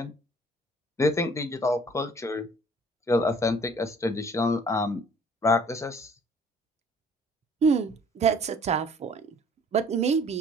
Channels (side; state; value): both; normal; correlation 0.54